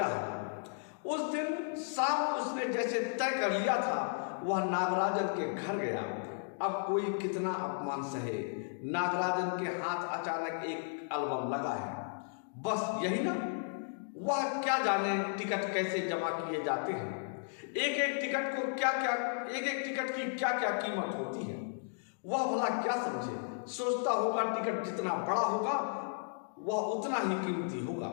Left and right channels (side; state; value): right; silent; digital silence